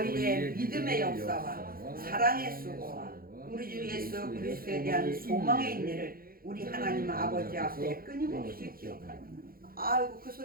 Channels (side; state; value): left; late; 0.42 ms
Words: 믿음의 역사와 사랑의 수고와 우리 주 예수 그리스도에 대한 소망의 인내를 우리 하나님 아버지 앞에 끊임없이 기억하라. 아이고 그